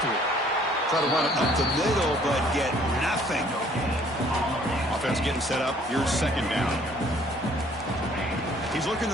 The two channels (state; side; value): normal; both; correlation 0.59